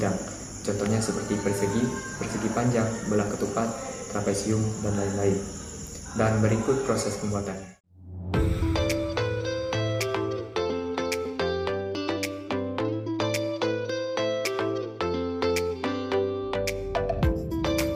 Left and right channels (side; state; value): both; identical; correlation 1.00